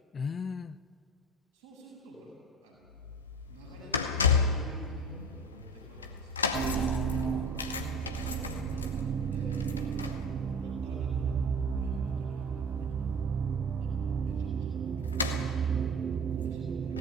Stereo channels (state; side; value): normal; both; correlation 0.32